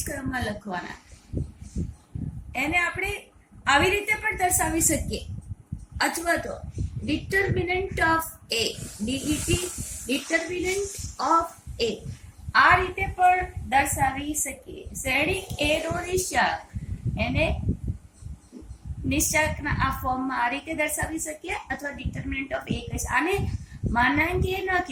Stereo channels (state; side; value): identical; both; correlation 1.00